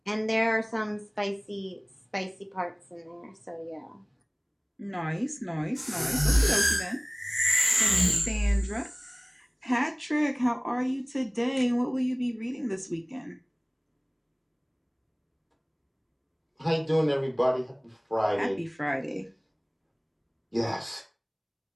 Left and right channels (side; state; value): both; identical; correlation 1.00